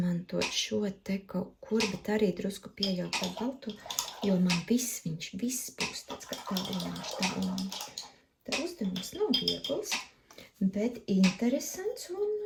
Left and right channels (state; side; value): identical; both; correlation 1.00